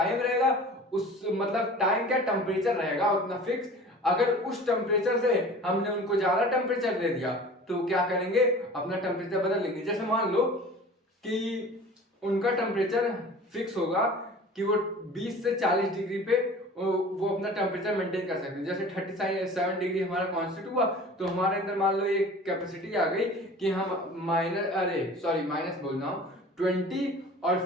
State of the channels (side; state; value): both; normal; correlation 0.42